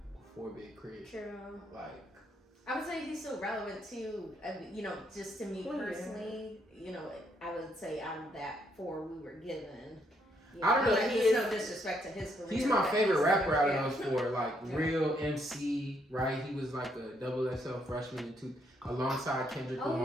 for Big Crit. True. Like I would say he's still relevant too. You know, just to me Well, yeah. personally, you know, I would say out of that 4 we were given. You I don't know, Like, he there's is- no disrespect to his career. he's my but favorite he's rapper out yeah. of those 4. Like Yeah. real MC, right? He was like a double XL freshman alongside Kendrick Oh,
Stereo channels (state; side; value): normal; both; correlation 0.73